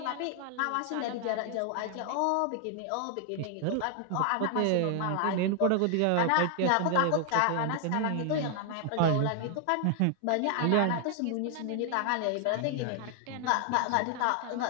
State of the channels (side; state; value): both; different; correlation 0.00